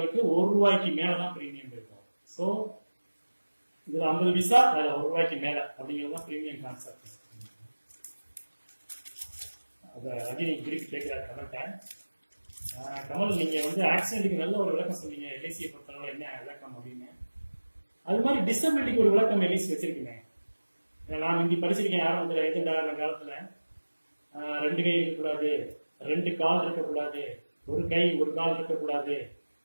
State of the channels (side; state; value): both; inverted; correlation -1.00